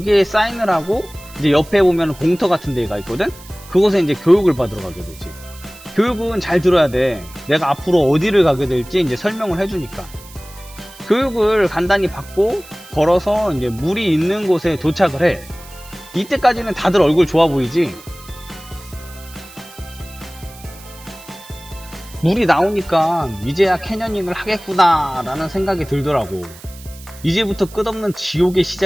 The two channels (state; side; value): noise; right; hiss, 20 dB below the sound